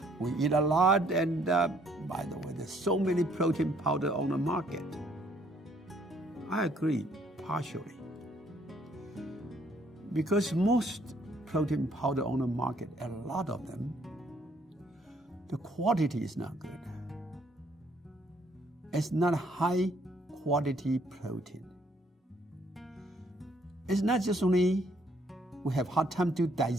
We eat a lot, and by the way, there's so many protein powder on the market. I agree, partially. Because most protein powder on the market, a lot of them, the quality is not good. It's not high quality protein. it's not just only we have hard time to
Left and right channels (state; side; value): normal; both; correlation 0.65